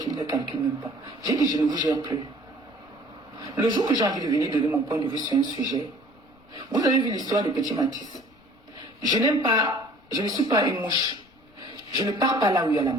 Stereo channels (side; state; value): left; noise; rumble, 30 dB below the sound